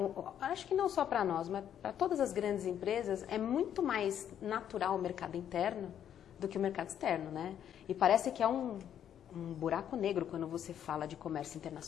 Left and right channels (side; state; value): right; quieter; 9.7 dB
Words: acho que não só para nós, mas para todas as grandes empresas, é muito mais natural o mercado interno do que o mercado externo, né? E parece que é um buraco negro quando você fala de comércio